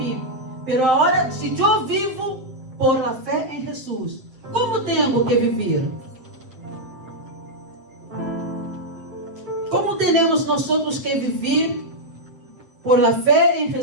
Pero agora, se eu vivo por la fé em Jesus, como tenho que viver? Como teremos nós que viver por la fé em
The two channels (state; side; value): late; left; 7.7 ms